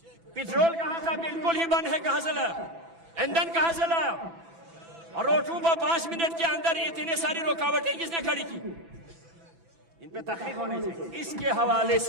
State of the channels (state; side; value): late; left; 6.0 ms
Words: پیٹرول کہاں تھا؟ بالکل ہی بند ہے، کہاں سے لایا؟ ایندھن کہاں سے لایا؟ اور روٹوں پر 5 منٹ کے اندر اتنے ساری رکاوٹیں کس نے کھڑی کی؟ ان پہ تحقیق ہونی چاہیے۔ اس کے حوالے